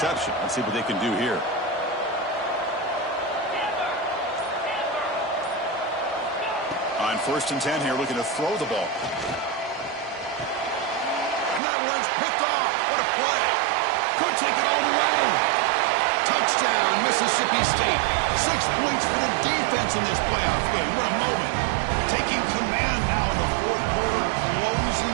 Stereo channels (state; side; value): drops out; left; at 11.6 s